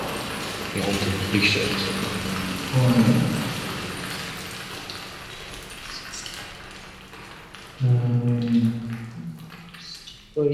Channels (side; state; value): both; identical; correlation 1.00